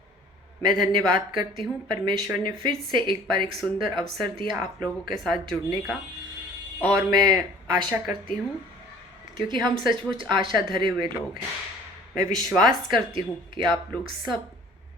मैं धन्यवाद करती हूँ, परमेश्वर ने फिर से एक बार एक सुंदर अवसर दिया आप लोगों के साथ जुड़ने का। और मैं आशा करती हूँ, क्योंकि हम सचमुच आशा धरे हुए लोग हैं, मैं विश्वास करती हूँ कि आप लोग सब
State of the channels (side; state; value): both; normal; correlation 0.50